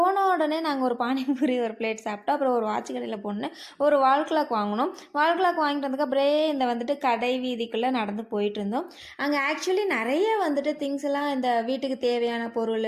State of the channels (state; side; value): identical; both; correlation 1.00